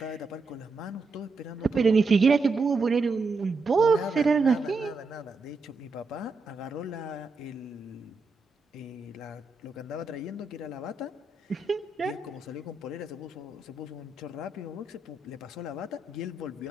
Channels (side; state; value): left; quieter; 3.7 dB